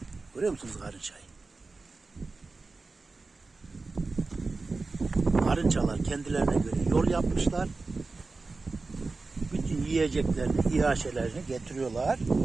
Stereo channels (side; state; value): left; quieter; 3.8 dB